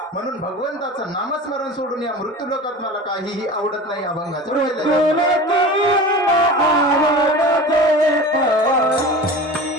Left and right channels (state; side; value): normal; both; correlation 0.34